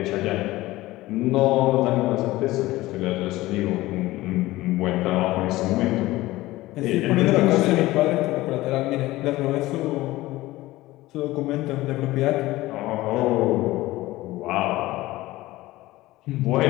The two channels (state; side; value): quieter; right; 18.0 dB